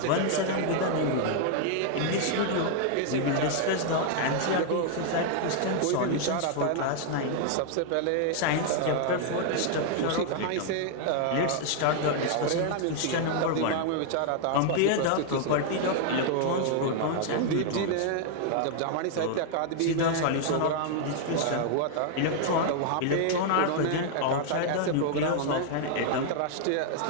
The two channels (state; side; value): different; both; correlation 0.00